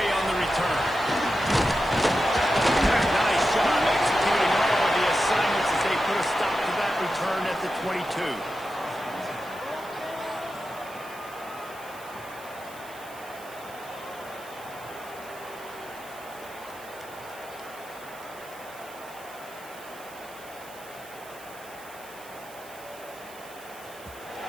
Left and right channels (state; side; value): noise; right; hiss, 19 dB below the sound